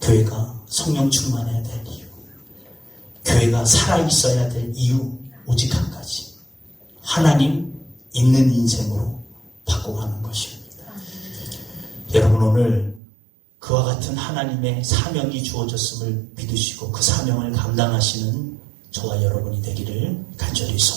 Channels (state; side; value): drops out; left; at 13.0 s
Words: 교회가 성령 충만해야 될 이유, 교회가 살아있어야 될 이유, 오직 한 가지. 하나님 있는 인생으로 바꿔가는 것입니다. 여러분, 오늘 그와 같은 하나님의 사명이 주어졌음을 믿으시고 그 사명을 감당하시는 저와 여러분이 되기를 간절히